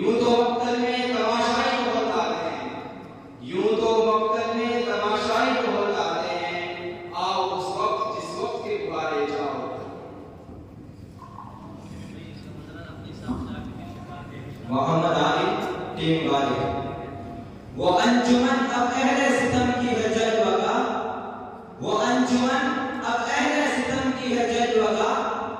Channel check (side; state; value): both; identical; correlation 1.00